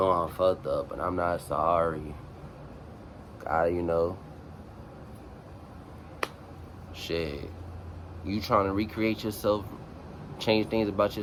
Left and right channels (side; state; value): both; identical; correlation 1.00